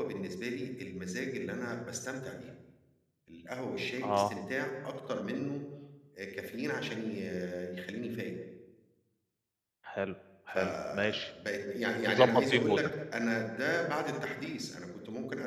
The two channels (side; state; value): both; identical; correlation 1.00